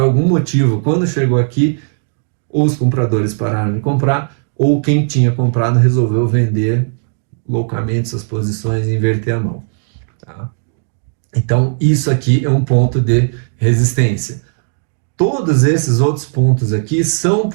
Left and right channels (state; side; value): silent; left; digital silence